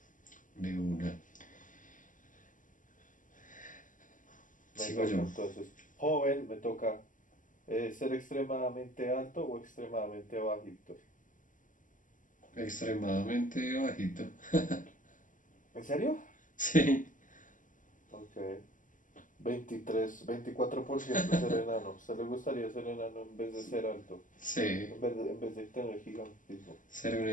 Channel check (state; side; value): late; right; 0.38 ms